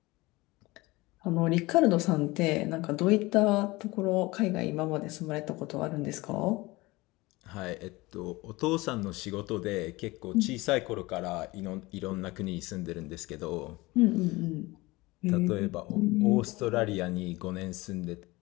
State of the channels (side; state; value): right; quieter; 21.5 dB